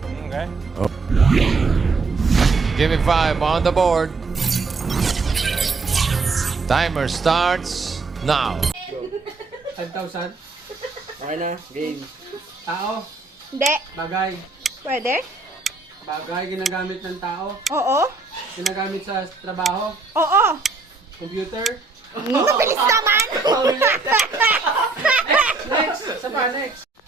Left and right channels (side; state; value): left; quieter; 4.0 dB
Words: Okay. Give me 5 on the board. Timer starts now. 5,000. Okay na, game. Tao, Hindi. bagay. Pwede? Bagay, ginagamit ng tao. Oo. Ginagamit sa trabaho. Oo. Computer. Bilis naman! Next! Sa pa, next.